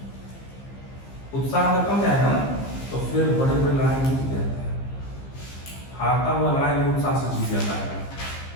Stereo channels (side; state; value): right; late; 15 ms